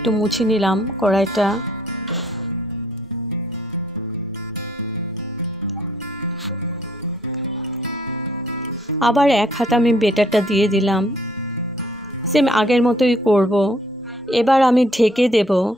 মুছে নিলাম কড়াইটা। আবার এক হাতে আমি বেটারটা দিয়ে দিলাম, সেম আগের মতোই করব। এবার আমি ঢেকে দেব।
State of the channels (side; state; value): both; normal; correlation 0.63